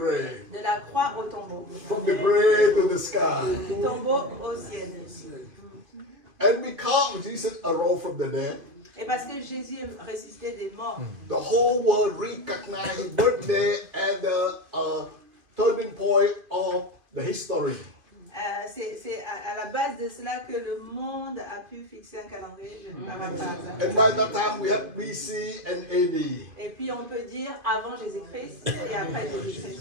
de la croix au tombeau, From the grave to the sky. du tombeau au ciel. And because Jesus arose from the dead, Et parce que Jésus est ressuscité des morts, the whole world recognized his birthday as the turning point of the history. C'est à la base de cela que le monde a pu fixer un calendrier. Je paraphrase. And by that time we have BC and AD. Et puis on peut dire avant Jésus-Christ et après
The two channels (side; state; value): left; late; 2.5 ms